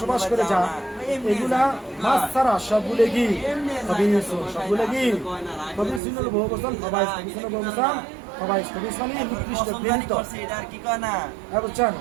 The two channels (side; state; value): left; drops out; at 6.0 s